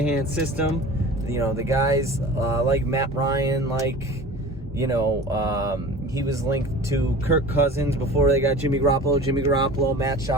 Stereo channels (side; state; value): both; normal; correlation 0.39